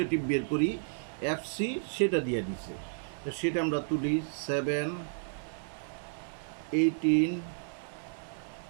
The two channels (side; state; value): left; silent; digital silence